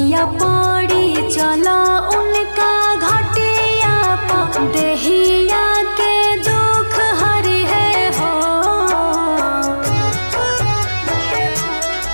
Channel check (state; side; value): inverted; both; correlation -1.00